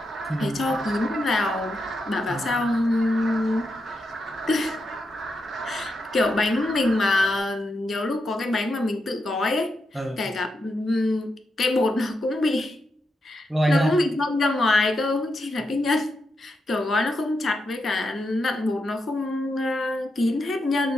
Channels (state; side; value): normal; both; correlation 0.85